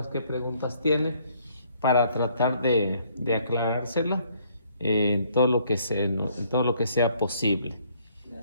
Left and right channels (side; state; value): both; inverted; correlation -0.65